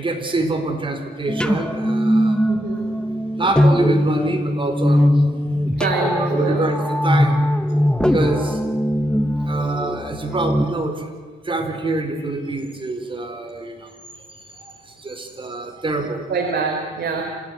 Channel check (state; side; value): normal; both; correlation 0.81